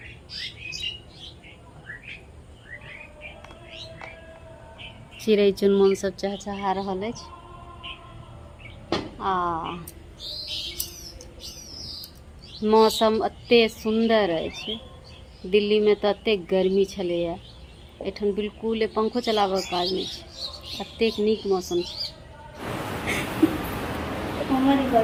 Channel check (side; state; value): both; identical; correlation 1.00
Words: चिड़ै चुनमुन सब चहचहा रहल अछि। मौसम अते सुंदर अछि। दिल्ली में तो अते गर्मी छलैया, एठन बिल्कुल पंखो चलाबऽ के काज नहीं छै, अतेक नीक मौसम छै।